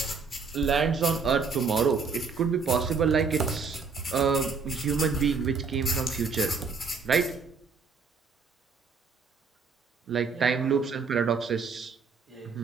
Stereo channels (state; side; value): quieter; left; 5.1 dB